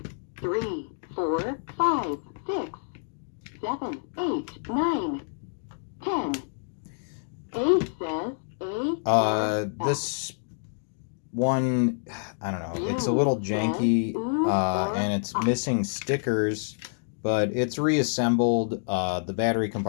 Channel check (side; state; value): right; silent; digital silence